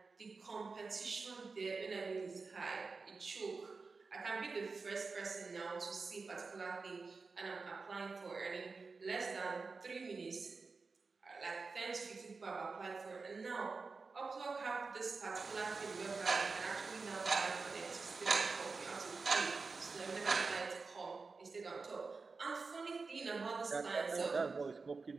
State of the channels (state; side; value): quieter; left; 4.3 dB